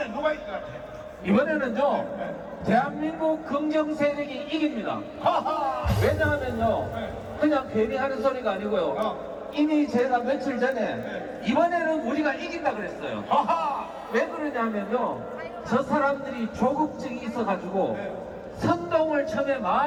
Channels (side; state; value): both; identical; correlation 1.00